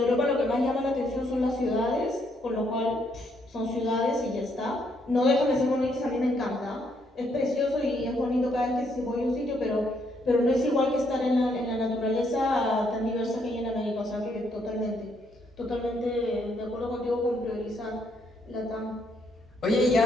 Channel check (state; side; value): normal; both; correlation 0.73